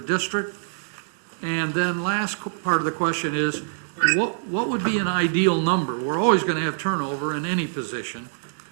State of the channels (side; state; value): left; silent; 62 dB below the other